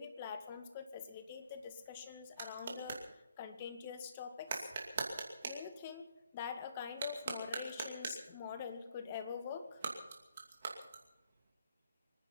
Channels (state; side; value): inverted; both; correlation -0.69